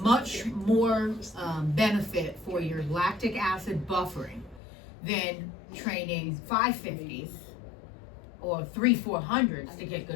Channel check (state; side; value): drops out; right; at 4.6 s